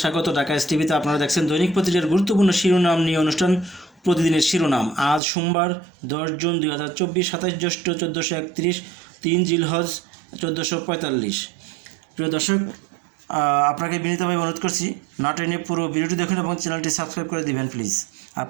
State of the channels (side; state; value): left; drops out; at 5.2 s